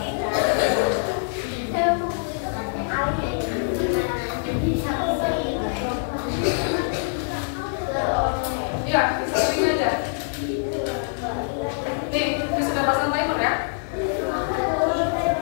Ya, bisa begini aja. Nih, Miss sudah pasang timer ya.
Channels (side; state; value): right; silent; digital silence